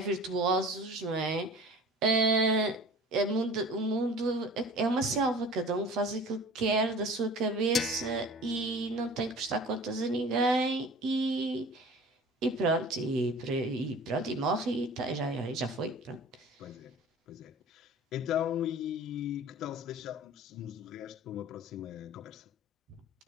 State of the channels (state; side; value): normal; both; correlation 0.42